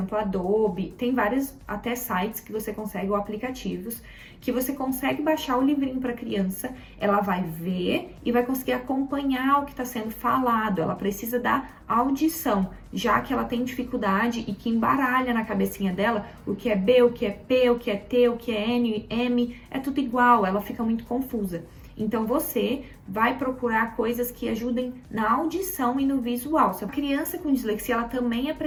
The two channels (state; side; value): identical; both; correlation 1.00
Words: Adobe, tem vários até sites que você consegue, ou aplicativos, que você consegue baixar o livrinho para a criança, ela vai ver e vai conseguir acompanhar o que está sendo falado. Ela precisa da audição, já que ela tem dificuldade e que embaralha na cabecinha dela o que é B, o que é P, o que é T, o que é N, M, é tudo igual, ela fica muito confusa. Então você vai procurar coisas que ajudem na audição e no visual. Se a criança com dislexia, ela também